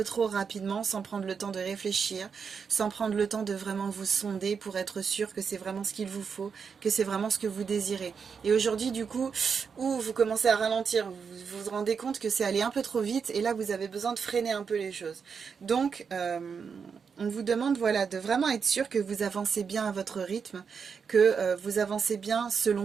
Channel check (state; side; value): quieter; left; 6.1 dB